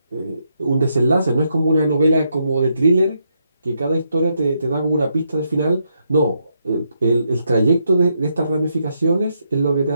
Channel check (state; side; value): inverted; both; correlation -0.79